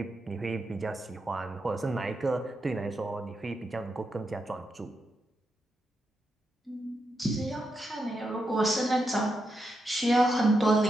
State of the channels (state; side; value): normal; both; correlation 0.85